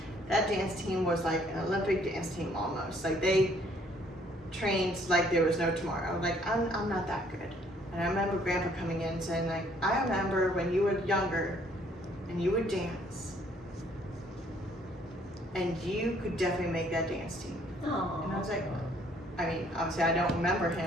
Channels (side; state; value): both; normal; correlation 0.63